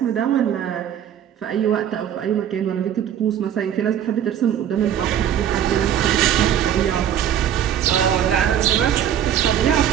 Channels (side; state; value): left; quieter; 9.9 dB